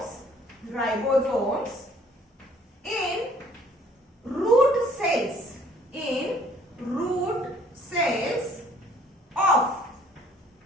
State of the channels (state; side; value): normal; both; correlation 0.58